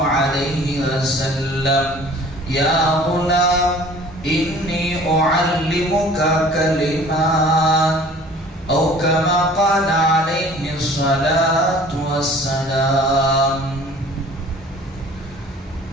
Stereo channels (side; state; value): both; normal; correlation 0.49